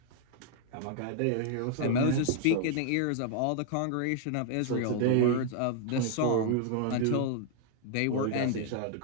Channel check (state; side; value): different; both; correlation 0.00